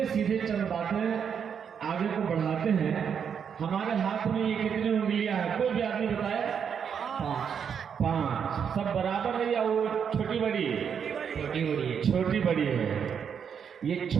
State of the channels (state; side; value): quieter; left; 7.4 dB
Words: सीधे चंद बातें आगे को बढ़ाते हैं। हमारे हाथ में ये कितनी उंगलियां हैं, कोई भी आदमी बताए? 5। सब बराबर है या वो छोटी बड़ी है? छोटी बड़ी है। छोटी बड़ी है। ये